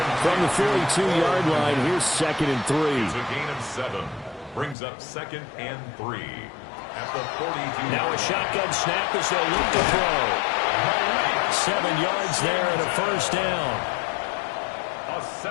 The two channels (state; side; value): drops out; right; at 4.8 s